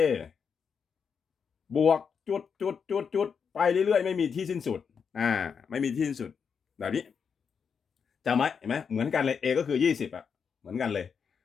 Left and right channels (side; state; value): right; quieter; 6.4 dB